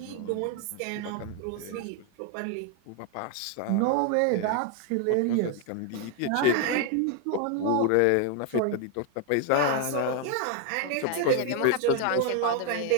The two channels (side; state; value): both; different; correlation 0.00